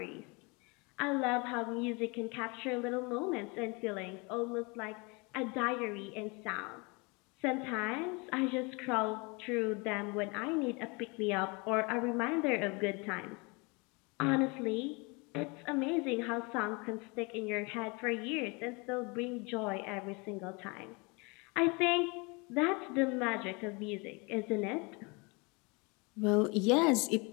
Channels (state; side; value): quieter; right; 29.0 dB